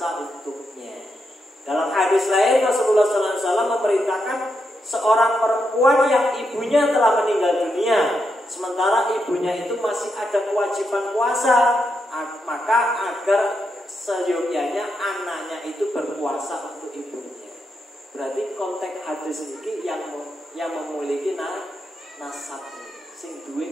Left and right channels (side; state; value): both; normal; correlation 0.83